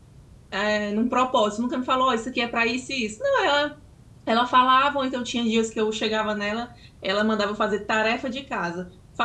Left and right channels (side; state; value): both; identical; correlation 1.00